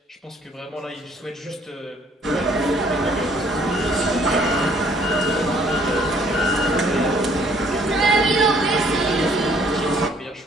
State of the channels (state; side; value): normal; both; correlation 0.61